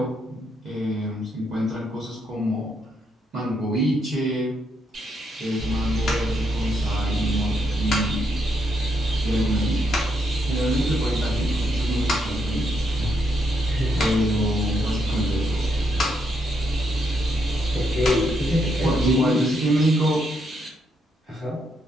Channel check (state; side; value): normal; both; correlation 0.77